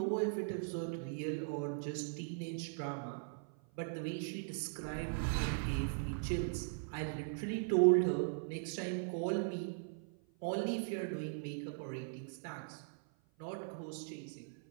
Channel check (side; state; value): left; silent; 51 dB below the other